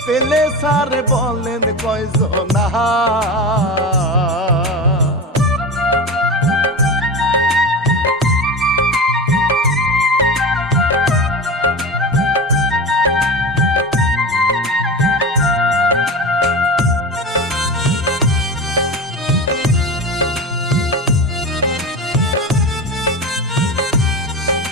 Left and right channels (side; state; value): both; normal; correlation 0.26